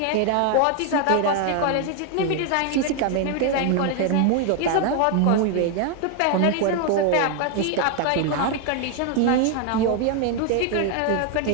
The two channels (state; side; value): different; both; correlation 0.01